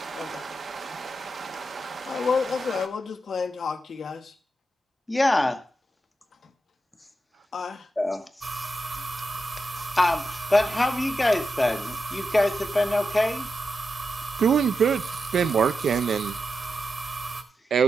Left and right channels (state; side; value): normal; both; correlation 0.88